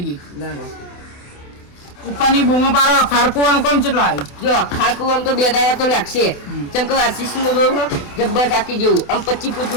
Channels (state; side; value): late; right; 28 ms